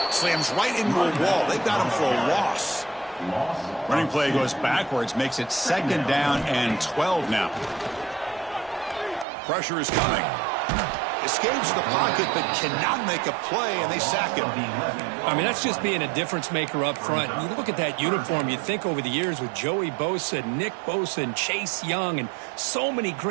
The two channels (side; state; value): left; drops out; at 9.2 s